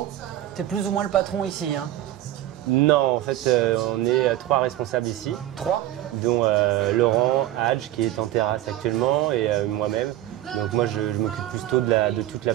tu es plus ou moins le patron ici, hein? Non, en fait, on est 3 responsables ici. 3? Dont Laurent Hadj, qui est en terrasse actuellement, et moi-même. Donc moi, je m'occupe plutôt de toute la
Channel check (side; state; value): left; quieter; 14.0 dB